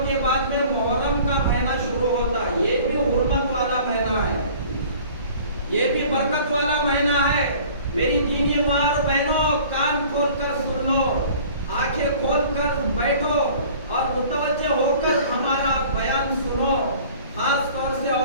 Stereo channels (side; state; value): both; inverted; correlation -0.48